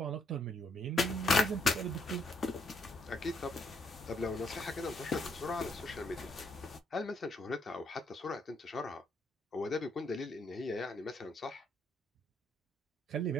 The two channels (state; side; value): normal; both; correlation 0.72